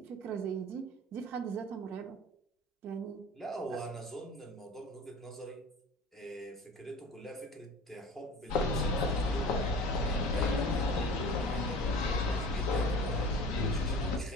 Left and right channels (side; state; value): both; normal; correlation 0.39